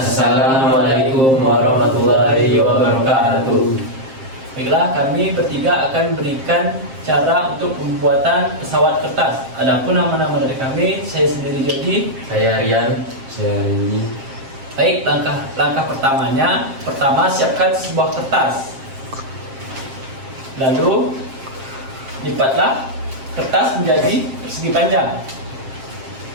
warahmatullahi wabarakatuh. Baiklah, kami bertiga akan berikan cara untuk pembuatan pesawat kertas. Adapun nama-nama dari kami, saya sendiri Jody, Saya Rian. Saya Randy. Baik, langkah pertamanya, siapkan sebuah kertas. Lalu lipatlah kertas menjadi persegi panjang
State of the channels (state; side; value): late; left; 7.6 ms